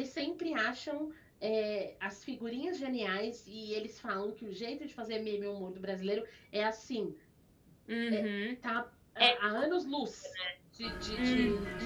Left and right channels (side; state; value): both; identical; correlation 1.00